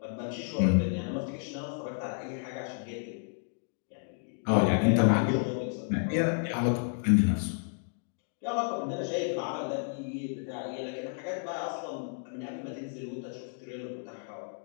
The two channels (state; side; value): silent; right; 57 dB below the other